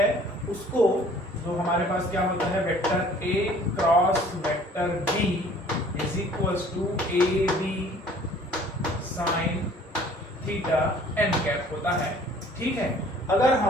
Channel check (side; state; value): both; normal; correlation 0.53